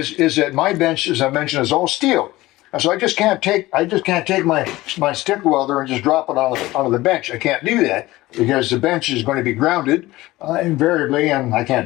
that my bench, as I mentioned, is all steel. And so I just can't take my stick welder and just drop it onto the bench. I can't do that because the bench is going to be grounded invariably, and I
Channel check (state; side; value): quieter; right; 18.4 dB